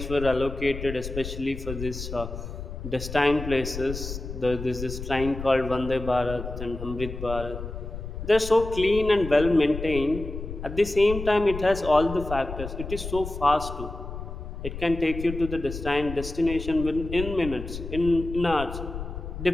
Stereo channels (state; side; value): noise; left; rumble, 8 dB below the sound